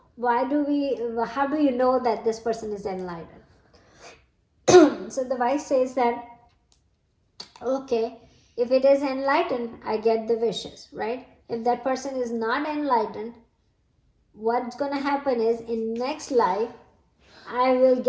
How do you know that this person is enlightened? So the wife says that, okay, if it is enlightened, I get the wishes, right? If that person is not enlightened, what's going to happen is, in next life, I will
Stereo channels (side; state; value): both; identical; correlation 1.00